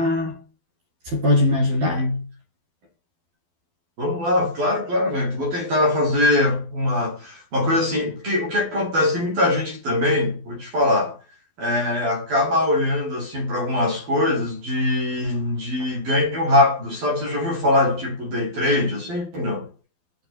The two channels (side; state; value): left; late; 12 ms